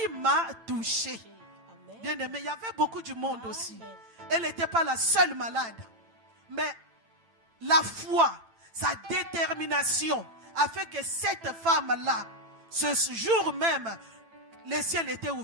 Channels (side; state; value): left; late; 8.9 ms